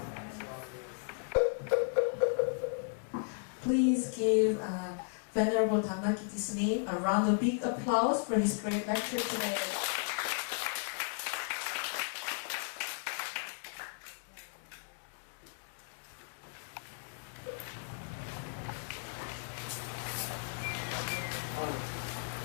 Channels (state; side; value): silent; right; digital silence